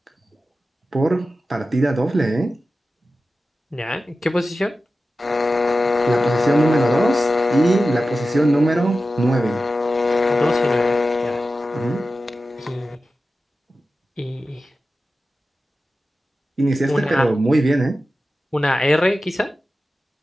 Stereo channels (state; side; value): normal; both; correlation 0.94